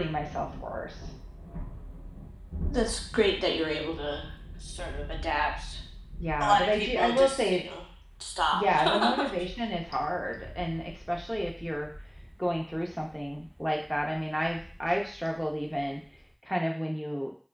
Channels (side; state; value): both; identical; correlation 1.00